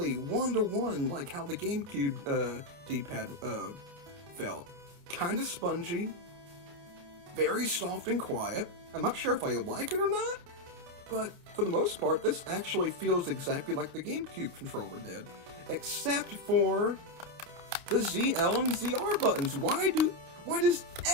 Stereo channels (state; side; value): late; left; 29 ms